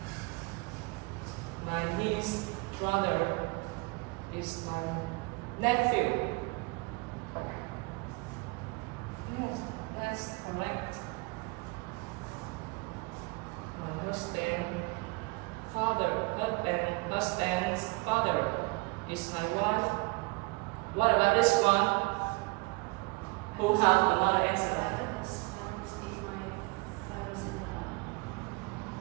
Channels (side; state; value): left; quieter; 27.2 dB